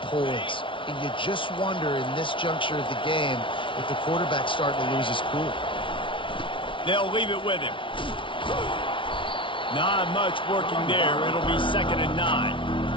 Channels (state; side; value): late; right; 0.25 ms